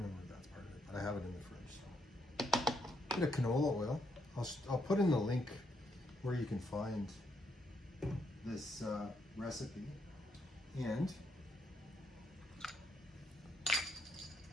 if that's part of it, but I have it in the fridge. So. Bit of canola oil. I'll put in the link where you can find this recipe. And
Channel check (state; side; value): normal; both; correlation 0.75